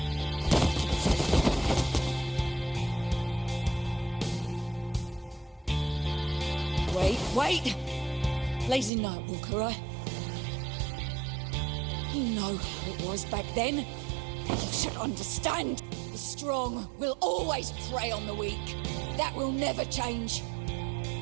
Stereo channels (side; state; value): left; drops out; at 8.9 s